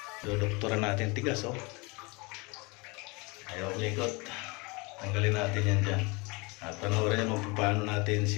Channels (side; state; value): right; quieter; 27.4 dB